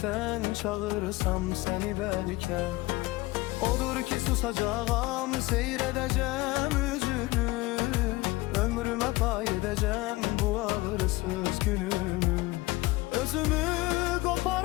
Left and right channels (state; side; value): quieter; right; 20.6 dB